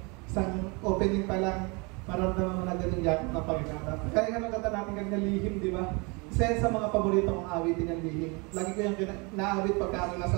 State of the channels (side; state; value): left; quieter; 29.5 dB